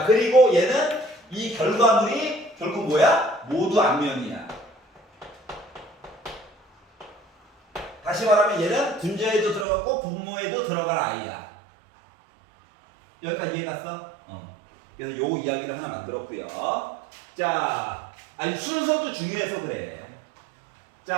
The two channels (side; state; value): left; drops out; at 9.7 s